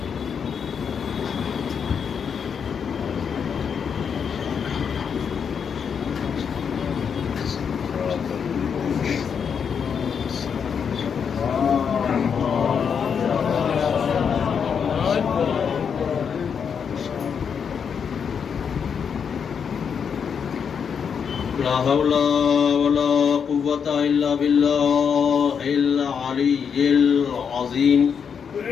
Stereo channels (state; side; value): quieter; right; 6.9 dB